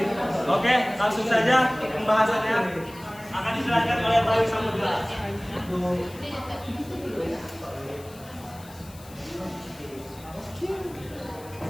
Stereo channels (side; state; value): left; noise; hiss, 21 dB below the sound